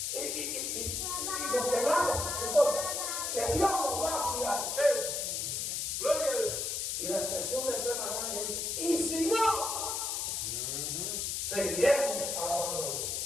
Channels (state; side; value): noise; left; hiss, 1 dB below the sound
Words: y nos quemamos, no importa, que Dios nos va a cuidar. Gloria a Dios. Y la expresión de fe más grande es, y si no, seguiremos alabando a